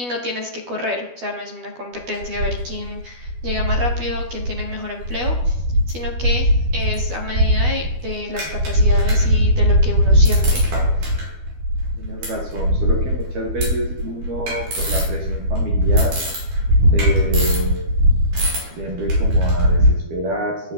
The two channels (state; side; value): late; left; 12 ms